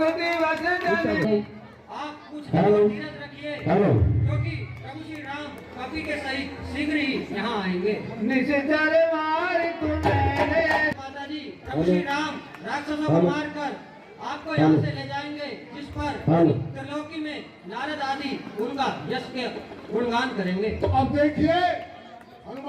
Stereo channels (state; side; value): identical; both; correlation 1.00